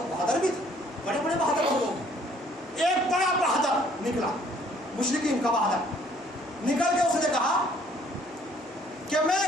بہادر بھی تھے، بڑے بڑے بہادر لوگ. ایک بڑا بہادر نکلا، مشرکین کا بہادر نکل کے اس نے کہا کہ میں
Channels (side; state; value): both; normal; correlation 0.60